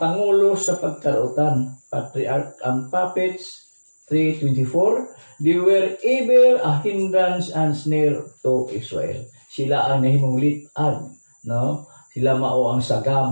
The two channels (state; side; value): inverted; both; correlation -1.00